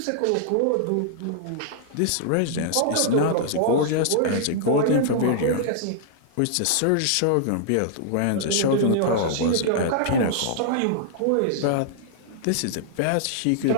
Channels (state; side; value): different; both; correlation -0.01